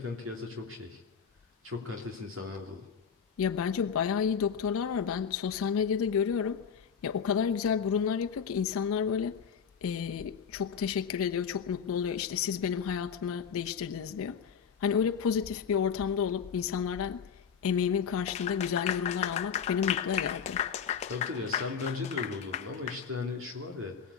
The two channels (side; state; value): right; quieter; 6.9 dB